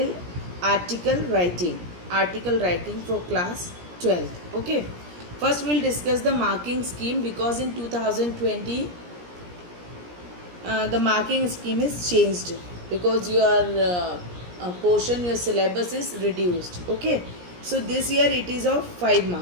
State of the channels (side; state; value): left; late; 17 ms